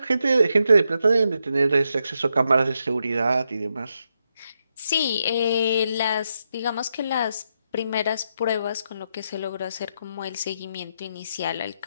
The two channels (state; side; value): inverted; both; correlation -0.82